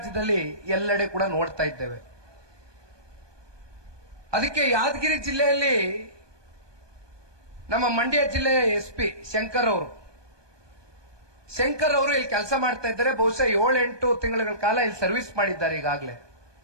ಎಲ್ಲೆಡೆ ಕೂಡ ನೋಡ್ತಾ ಇದ್ದೇವೆ. ಅದಕ್ಕೆ ಯಾದಗಿರಿ ಜಿಲ್ಲೆಯಲ್ಲಿ ನಮ್ಮ ಮಂಡ್ಯ ಜಿಲ್ಲೆಯ SP ಶಂಕರ್ ಅವರು ಇಲ್ಲಿ ಕೆಲಸ ಮಾಡ್ತಾ ಇದ್ದಾರೆ. ಬಹುಶಃ 7-8 ತಿಂಗಳ ಕಾಲ ಇಲ್ಲಿ ಸರ್ವಿಸ್ ಮಾಡಿದ್ದಾರೆ ಈಗಾಗಲೇ.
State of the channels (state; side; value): late; left; 1.2 ms